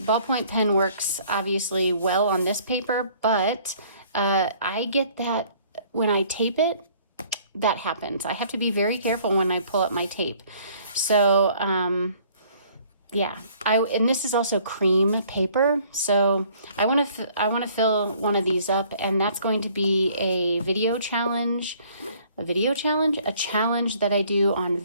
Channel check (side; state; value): both; inverted; correlation -0.58